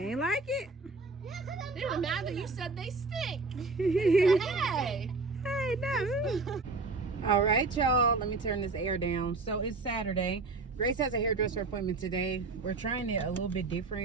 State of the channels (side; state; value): left; quieter; 3.8 dB